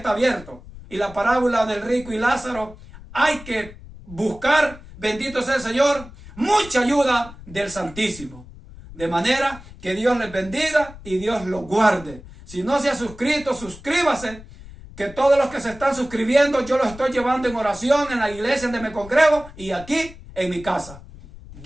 abierto. Y la parábola del rico y Lázaro hay que buscar, bendito sea el Señor, mucha ayuda del Santísimo. De manera que Dios les bendiga y Dios los guarde. Si no se ha suscrito, suscríbase. Que todos los que se están suscribiendo, yo los estoy llevando en oración en la iglesia donde me congrego y aquí en mi casa.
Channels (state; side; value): noise; left; rumble, 17 dB below the sound